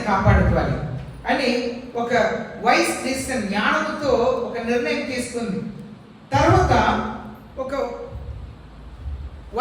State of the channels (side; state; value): both; identical; correlation 1.00